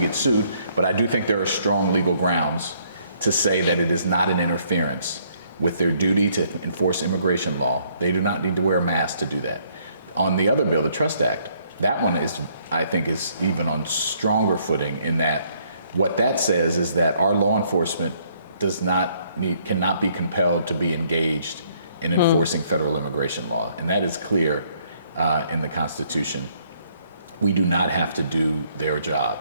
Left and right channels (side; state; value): both; inverted; correlation -0.67